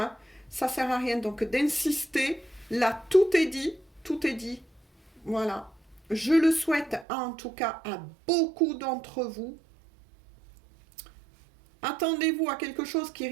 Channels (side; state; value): left; drops out; at 7.1 s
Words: Ça ne sert à rien donc d'insister. Là, tout est dit. Voilà. Je le souhaite en tout cas à beaucoup d'entre vous. Attendez-vous à quelque chose qui